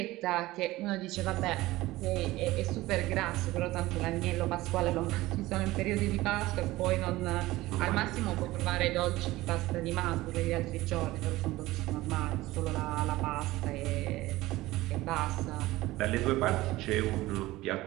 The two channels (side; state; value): left; quieter; 18.1 dB